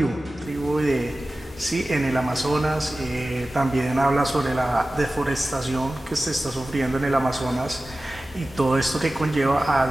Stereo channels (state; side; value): normal; both; correlation 0.96